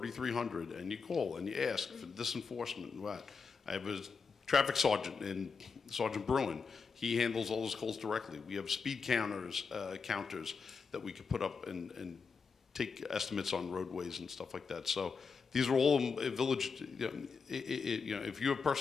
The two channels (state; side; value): quieter; right; 5.3 dB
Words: and you call and you ask for this enforcement and what. I have a traffic sergeant, and Sergeant Bruin. He handles all those calls directly. We have speed counters that we could put up and take estimates on roadways and stuff like that. So these are all village. If you have